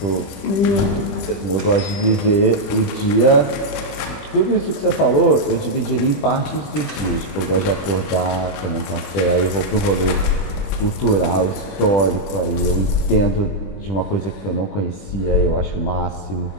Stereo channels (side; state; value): right; late; 20 ms